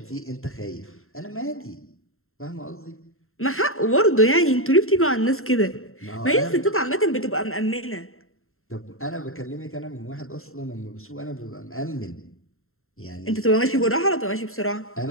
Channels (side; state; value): right; late; 0.62 ms